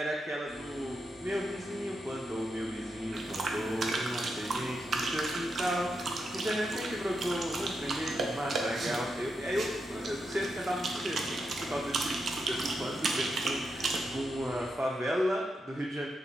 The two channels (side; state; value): both; normal; correlation 0.85